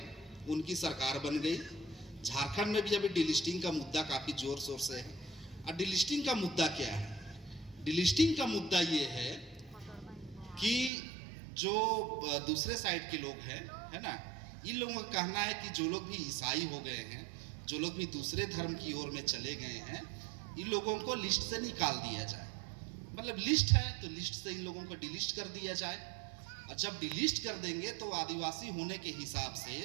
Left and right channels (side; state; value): left; drops out; at 10.9 s